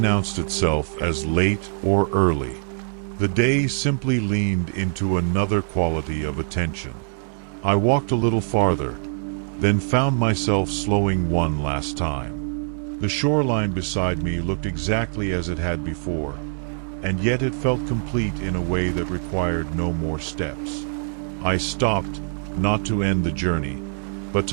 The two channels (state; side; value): silent; left; 62 dB below the other